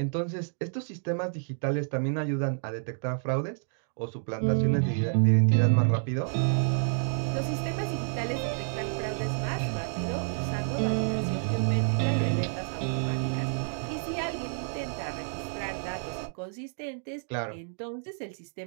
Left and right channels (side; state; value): left; silent; digital silence